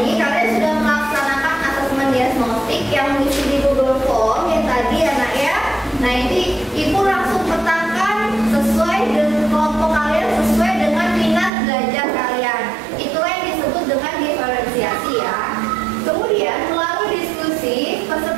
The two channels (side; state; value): left; drops out; at 11.5 s